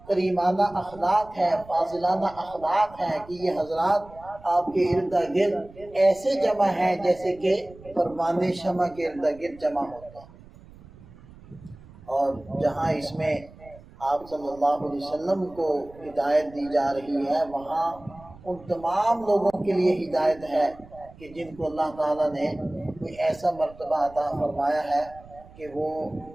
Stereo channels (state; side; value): noise; right; rumble, 21 dB below the sound